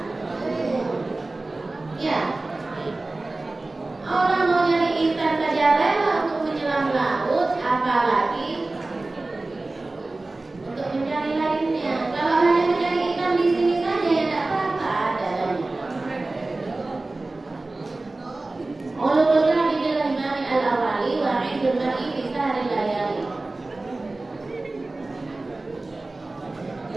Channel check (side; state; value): left; quieter; 3.1 dB